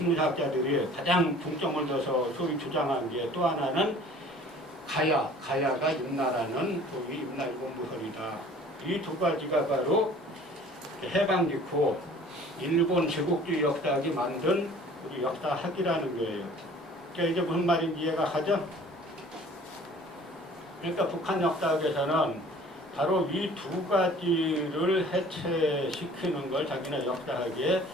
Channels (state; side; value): normal; both; correlation 0.49